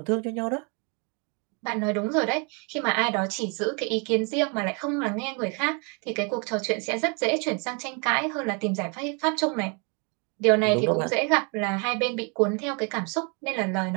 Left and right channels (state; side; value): quieter; left; 34.3 dB